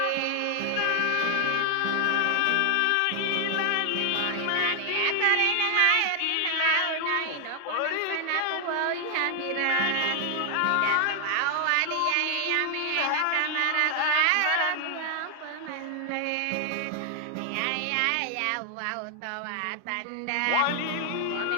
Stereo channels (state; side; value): different; both; correlation 0.00